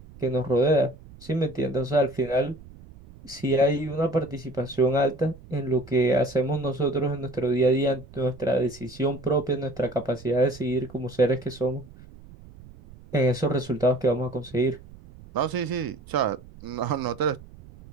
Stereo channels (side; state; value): right; noise; rumble, 20 dB below the sound